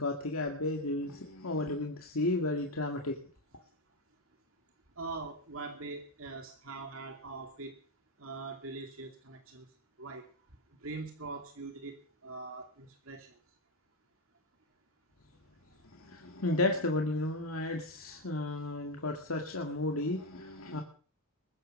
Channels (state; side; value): normal; both; correlation 0.06